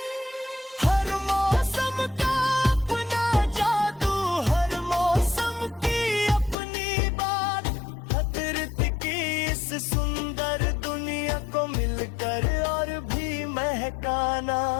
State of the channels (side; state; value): right; drops out; at 6.6 s